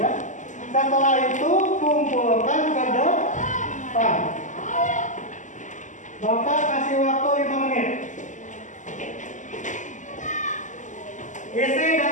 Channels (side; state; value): right; late; 0.36 ms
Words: Setelah itu kumpulkan ke depan. Bapak kasih waktu 5 menit. Isi